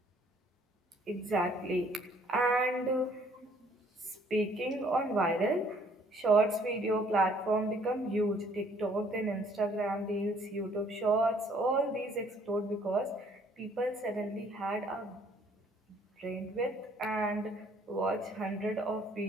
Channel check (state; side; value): normal; both; correlation 0.61